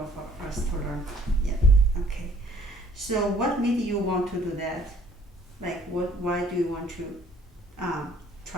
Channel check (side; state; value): both; normal; correlation 0.57